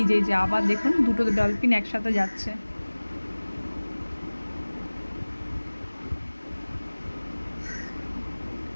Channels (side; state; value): both; inverted; correlation -1.00